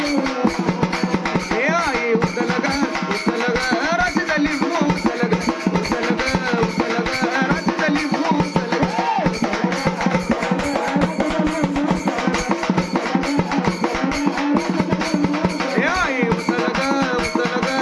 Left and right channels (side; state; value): both; identical; correlation 1.00